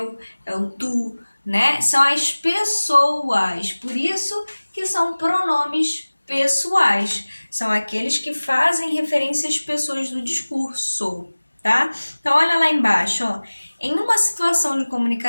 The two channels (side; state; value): both; inverted; correlation -1.00